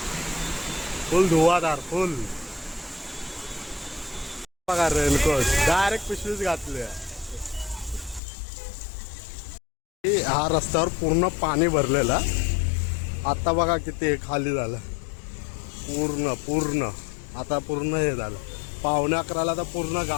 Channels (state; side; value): drops out; right; at 8.2 s